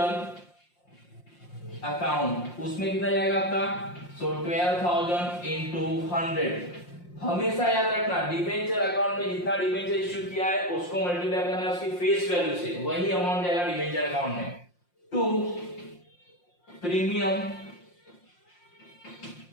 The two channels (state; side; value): late; right; 5.6 ms